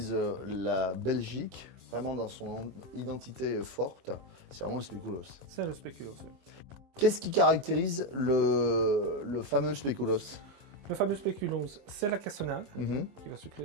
la Belgique, vraiment dans son identité forte, c'est vraiment le spéculoos. C'est le spéculoos, oui. Qu'est-ce qui caractérise le fameux spéculoos? Le fameux spéculoos, c'est la cassonade qui va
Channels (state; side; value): late; left; 23 ms